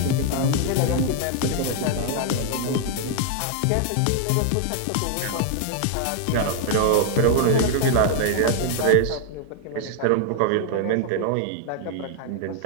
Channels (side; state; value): both; different; correlation 0.00